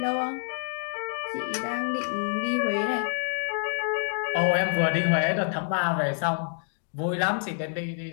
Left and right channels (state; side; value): silent; right; digital silence